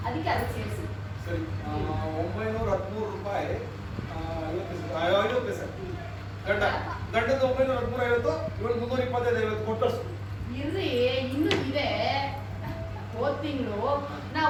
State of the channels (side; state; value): both; identical; correlation 1.00